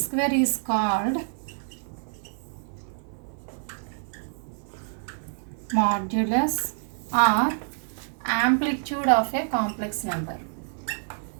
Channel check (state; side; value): silent; left; 60 dB below the other